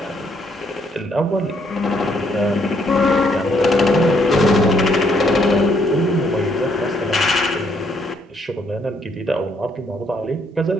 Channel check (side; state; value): both; normal; correlation 0.70